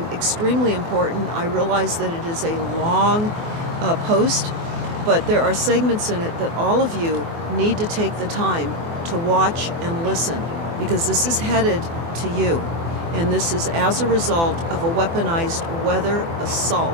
extremely important. I realize that it is a long post, but there are segments in it that all of you need to take the time to watch and listen, because this is headed to you. And this is as a result of a weaponized weather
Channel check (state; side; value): late; left; 24 ms